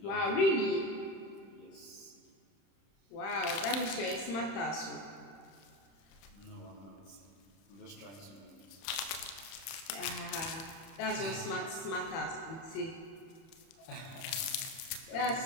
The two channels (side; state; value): right; late; 31 ms